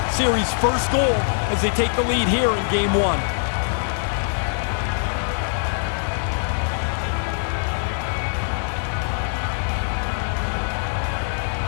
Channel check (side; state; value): right; silent; digital silence